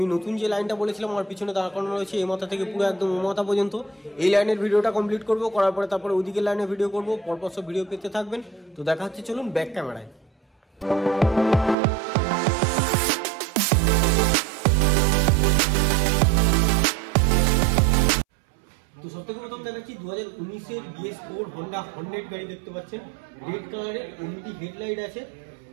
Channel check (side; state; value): left; drops out; at 11.8 s